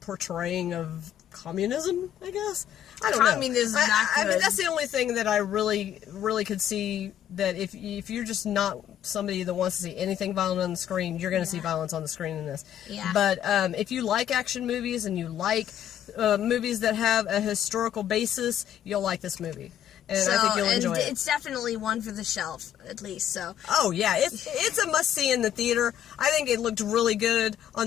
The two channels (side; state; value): right; quieter; 10.5 dB